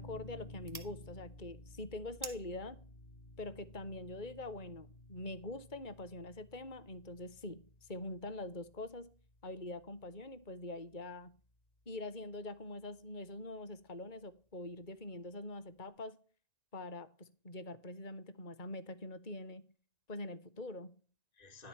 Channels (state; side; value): late; right; 1.9 ms